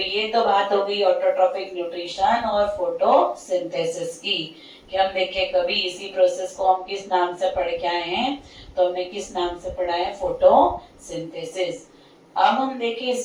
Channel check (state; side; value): identical; both; correlation 1.00